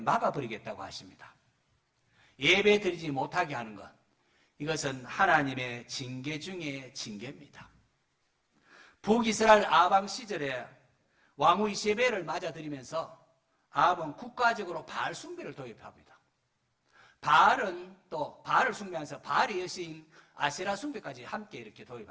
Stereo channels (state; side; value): identical; both; correlation 1.00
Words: 하십니다. 예배 드리지 못하게 하는 것, 이것은 하나님의 징계 중에 징계입니다. 북이스라엘 아방 시절에 왕후 이세벨을 맞아들이면서 아합은 국가적으로 바알 숭배를 도입합니다. 바알은 또 바알을 숭배하면서 바알의 여신 아세라 숭배까지 함께 이렇게